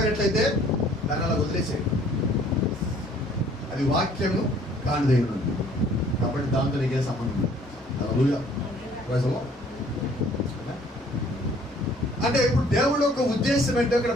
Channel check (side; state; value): both; normal; correlation 0.58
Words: దాన్ని అలా వదిలేసేయండి. అది వాక్యము కానిదై ఉన్నది కాబట్టి దాంతో నీకే సంబంధం లేదు. హల్లెలూయా. Praise the Lord. అంటే ఇప్పుడు దేవుడి యొక్క ఉద్దేశం ఏంటో ఇక్కడ